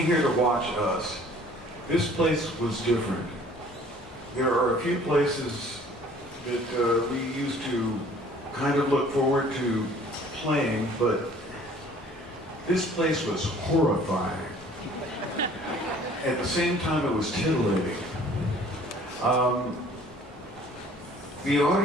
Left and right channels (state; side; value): normal; both; correlation 0.53